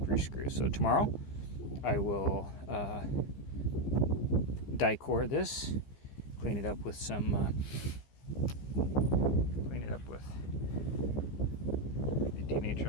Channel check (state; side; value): late; right; 15 ms